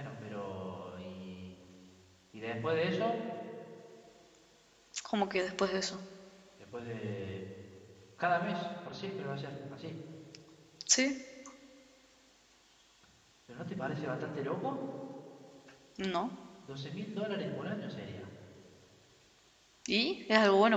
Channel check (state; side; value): identical; both; correlation 1.00